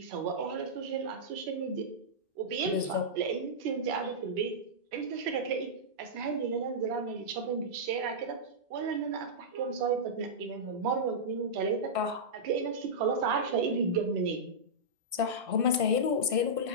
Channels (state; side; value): late; left; 1.5 ms